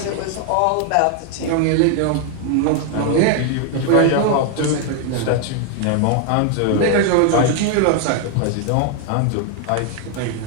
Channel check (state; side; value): different; both; correlation 0.00